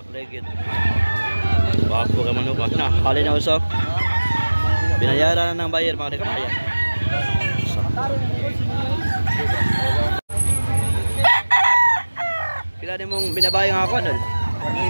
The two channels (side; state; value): both; inverted; correlation -1.00